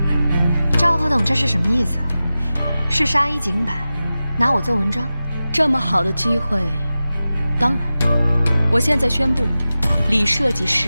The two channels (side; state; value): both; inverted; correlation -0.95